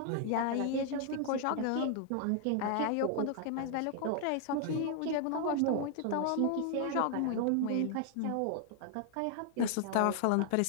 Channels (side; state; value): both; different; correlation 0.00